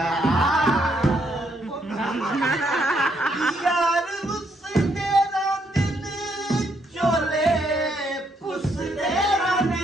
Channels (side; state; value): both; normal; correlation 0.73